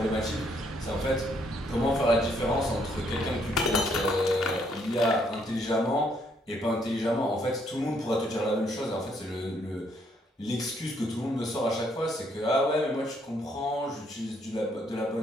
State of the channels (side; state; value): both; normal; correlation 0.70